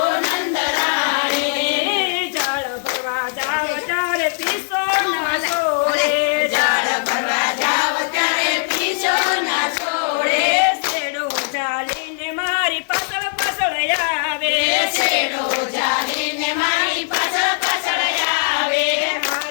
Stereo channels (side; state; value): right; silent; digital silence